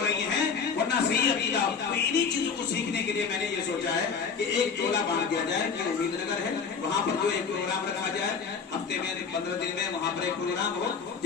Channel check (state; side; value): quieter; right; 5.9 dB